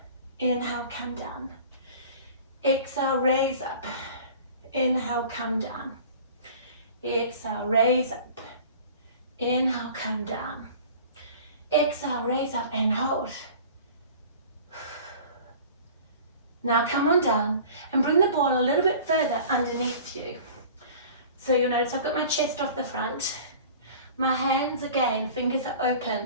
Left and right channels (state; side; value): inverted; both; correlation -0.43